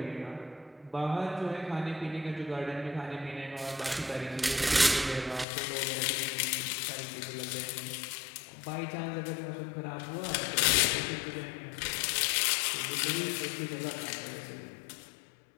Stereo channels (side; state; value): right; drops out; at 5.5 s